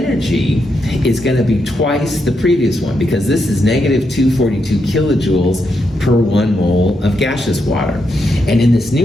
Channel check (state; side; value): normal; both; correlation 0.82